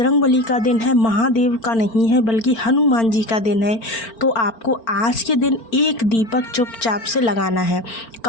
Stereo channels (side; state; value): right; late; 4.4 ms